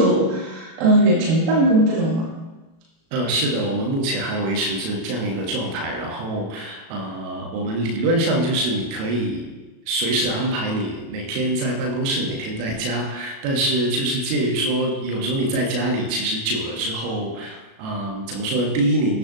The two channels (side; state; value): left; late; 36 ms